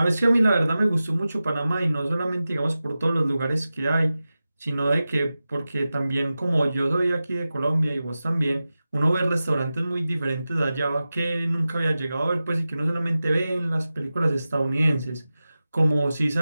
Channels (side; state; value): both; inverted; correlation -0.94